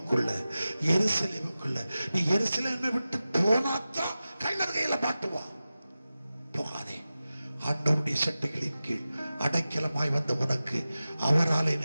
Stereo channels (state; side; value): inverted; both; correlation -0.94